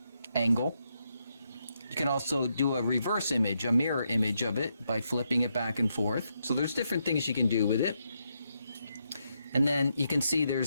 angle. You can also do a reverse image, a mirror image of it by flipping it back and forth. So there's different things you can do with it. And then you can see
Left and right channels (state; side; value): inverted; both; correlation -0.81